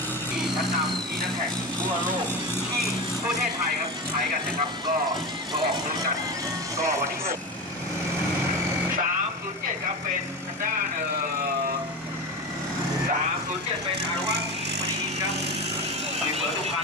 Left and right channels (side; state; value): both; normal; correlation 0.23